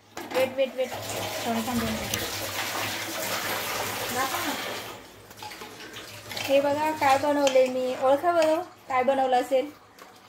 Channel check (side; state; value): both; identical; correlation 1.00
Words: वेट वेट वेट श्रावणी थांबून. हे बघा काय बनवले मी. ओळखा बरं काय बनवलं असेल.